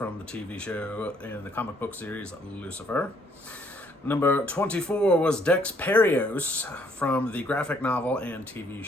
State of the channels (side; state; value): both; normal; correlation 0.66